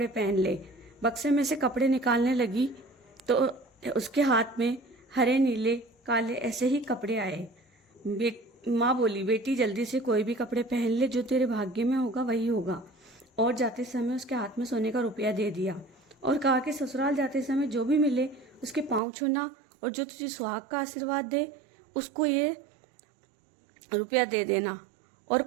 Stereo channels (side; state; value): left; drops out; at 19.0 s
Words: पहन ले। बक्से में से कपड़े निकालने लगी तो उसके हाथ में हरे नीले काले ऐसे ही कपड़े आए। माँ बोली बेटी जल्दी से कोई भी कपड़े पहन ले, जो तेरे भाग्य में होगा वही होगा। और जाते समय उसके हाथ में सोने का रुपया दे दिया और कहा कि ससुराल जाते समय जो भी मिले उसके पाँव छूना और जो तुझे सुहाग का आशीर्वाद दे उसको ये रुपया दे देना और